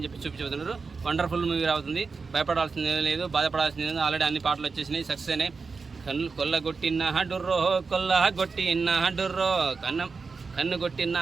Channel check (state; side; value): quieter; left; 4.7 dB